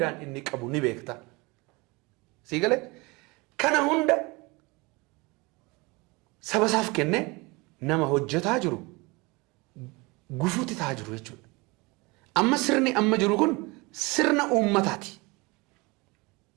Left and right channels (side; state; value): left; quieter; 25.3 dB